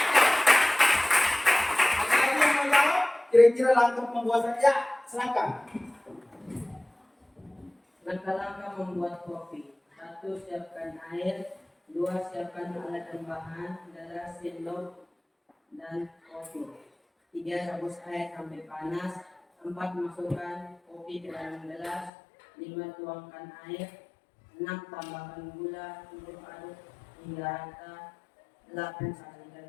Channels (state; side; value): drops out; right; at 22.1 s